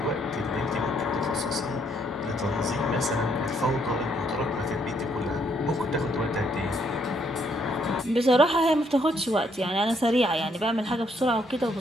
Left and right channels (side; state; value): both; normal; correlation 0.71